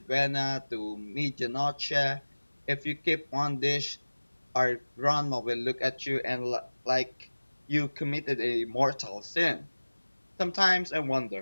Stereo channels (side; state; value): both; inverted; correlation -1.00